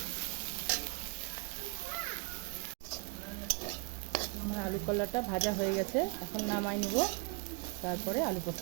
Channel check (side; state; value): left; quieter; 34.5 dB